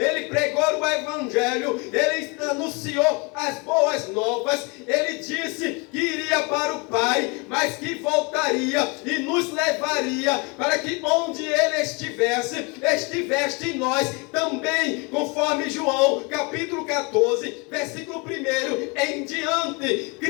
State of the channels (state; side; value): quieter; right; 29.5 dB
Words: pregou o Evangelho, Ele anunciou as boas novas, Ele disse que iria para o Pai, mas que voltaria e nos levaria para que onde Ele estivesse em nós também, conforme João capítulo 14, versículo 1 em diante.